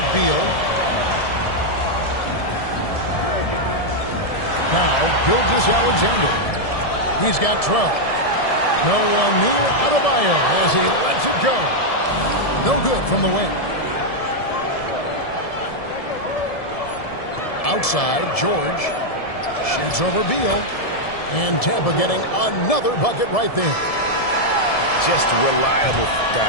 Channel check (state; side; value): late; right; 1.7 ms